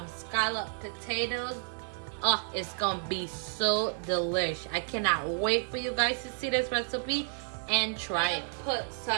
scallop potatoes. Oh, it's gonna be so delish. I cannot wait for you guys to see this recipe and try it. Put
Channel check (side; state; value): left; silent; digital silence